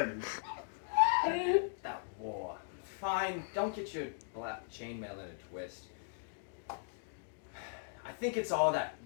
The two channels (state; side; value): silent; right; digital silence